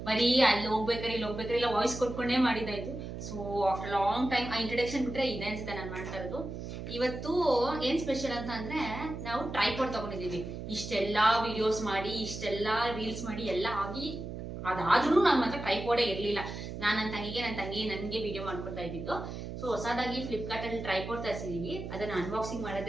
ಬರೀ ಅಲ್ಲಿ ಹೋಗ್ಬೇಕಾರೆ ಇಲ್ಲಿ ಹೋಗ್ಬೇಕಾರೆ ಇಲ್ಲ ವಾಯ್ಸ್ ಕೊಟ್ಕೊಂಡೇ ಮಾಡಿದಾಯ್ತು. ಸೊ ಆಫ್ಟರ್ ಲಾಂಗ್ ಟೈಮ್ ಆ ಇಂಟ್ರಡಕ್ಷನ್ ಬಿಟ್ರೆ ಇದೆ ಅನ್ಸುತ್ತೆ ನಾನು ಮಾಡ್ತಾ ಇರೋದು. ಇವತ್ತು ಏನ್ ಸ್ಪೆಷಲ್ ಅಂತ ಅಂದ್ರೆ ನಾವು ಟ್ರೈಪಾಡ್ ತಗೊಂಡಿದೀವಿ. ಇಷ್ಟೆಲ್ಲಾ ವಿಡಿಯೋಸ್ ಮಾಡಿ ಇಷ್ಟೆಲ್ಲಾ ರೀಲ್ಸ್ ಮಾಡಿ ಎಲ್ಲ ಆಗಿ ಅದಾದ್ರೂ ನನ್ನ ಮಾತ್ರ ಟ್ರೈಪಾಡೇ ಇರ್ಲಿಲ್ಲ. ನನ್ನ ತಂಗಿ ನನಗೆ ವಿಡಿಯೋ ಮಾಡ್ಕೊಡ್ತಾ ಇದ್ದಿದ್ದು. ಸೊ ಹೊಸದಾಗಿ ಫ್ಲಿಪ್ಕಾರ್ಟ್ ಅಲ್ಲಿ ಟ್ರೈಪಾಡ್ ತರಿಸಿದೀವಿ. ಅದನ್ನ ಅನ್ಬಾಕ್ಸಿಂಗ್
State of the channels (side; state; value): right; noise; hum, 8 dB below the sound